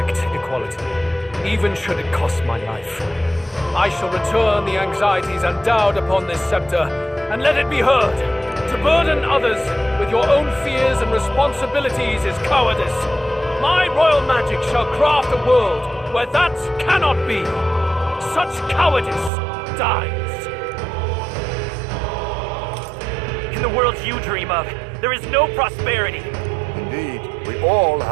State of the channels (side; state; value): left; drops out; at 19.3 s